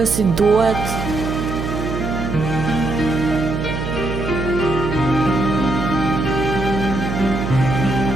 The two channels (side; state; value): right; noise; hum, 4 dB below the sound